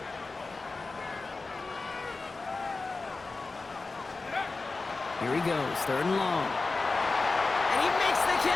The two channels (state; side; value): quieter; right; 3.8 dB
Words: Here he goes, 3rd and long. And he makes the